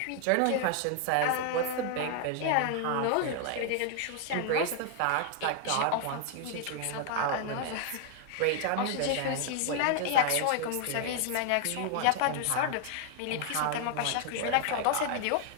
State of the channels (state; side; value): different; both; correlation 0.00